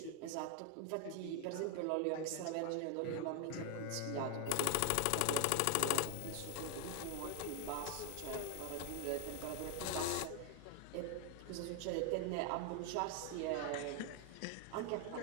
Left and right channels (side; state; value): both; different; correlation 0.00